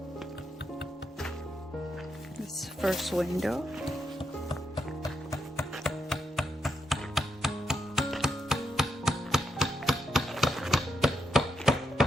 This first window.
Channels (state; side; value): normal; both; correlation 0.83